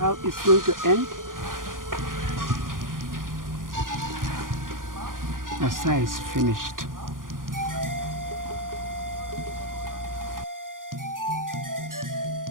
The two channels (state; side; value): late; left; 0.90 ms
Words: it's going to end? Asa is finished.